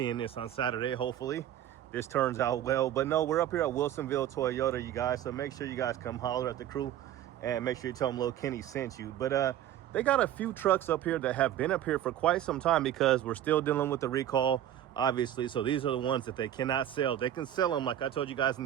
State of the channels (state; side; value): quieter; left; 11.5 dB